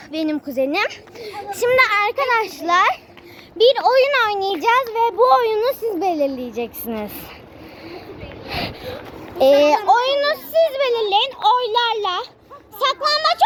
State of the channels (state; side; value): identical; both; correlation 1.00